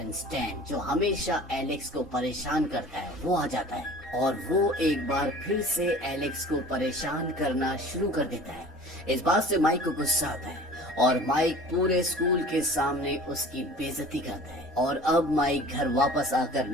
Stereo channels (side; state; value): both; normal; correlation 0.44